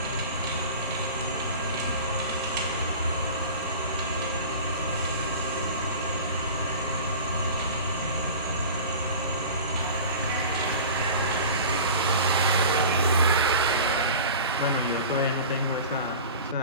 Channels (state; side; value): inverted; both; correlation -0.37